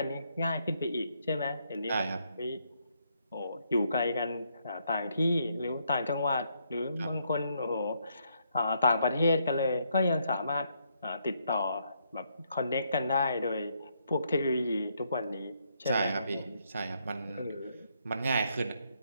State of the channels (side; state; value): both; inverted; correlation -0.75